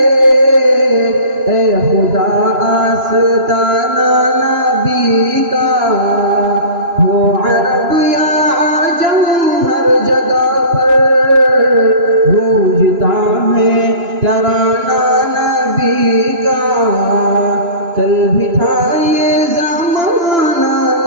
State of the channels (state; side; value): late; left; 2.9 ms